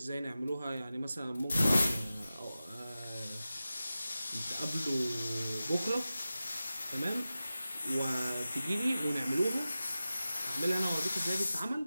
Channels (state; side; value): inverted; both; correlation -0.94